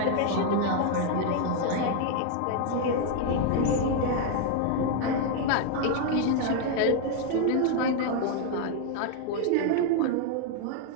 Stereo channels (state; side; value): different; both; correlation 0.00